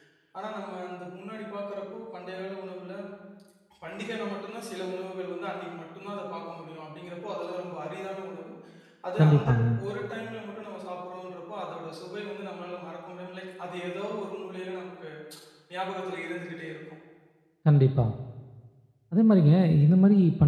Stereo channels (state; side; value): identical; both; correlation 1.00